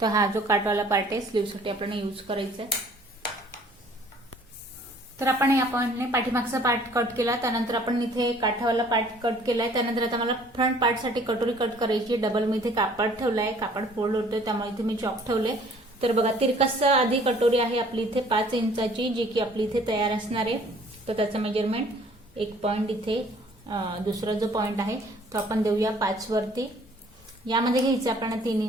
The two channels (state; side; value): normal; both; correlation 0.56